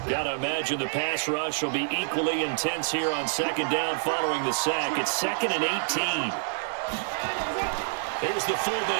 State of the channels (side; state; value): left; silent; 60 dB below the other